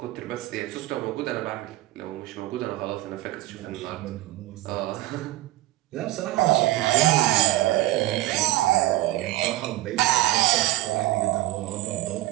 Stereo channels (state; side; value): quieter; left; 17.0 dB